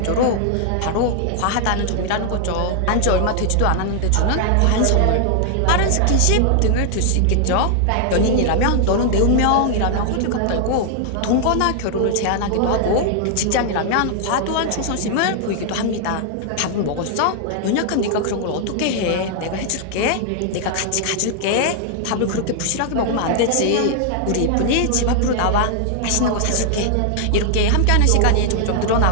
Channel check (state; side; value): different; both; correlation 0.00